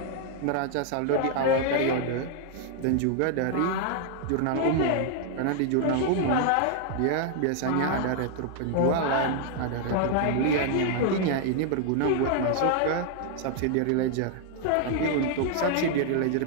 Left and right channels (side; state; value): both; different; correlation 0.00